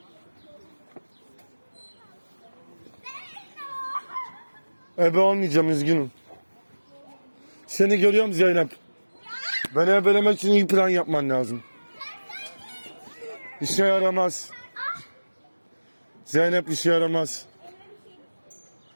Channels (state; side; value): inverted; both; correlation -1.00